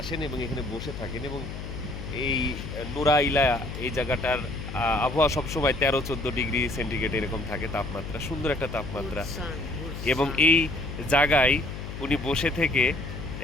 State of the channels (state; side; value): noise; left; hum, 8 dB below the sound